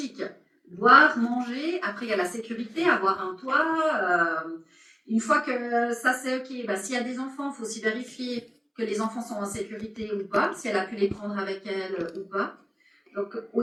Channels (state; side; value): identical; both; correlation 1.00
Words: Boire, manger, après il y a la sécurité, avoir un toit. Une fois que ça c'est ok, bah, s'il y a des enfants, il faut aussi vérifier que les enfants sont en sécurité ou pas, si elle a pu les prendre avec elle ou pas. Donc au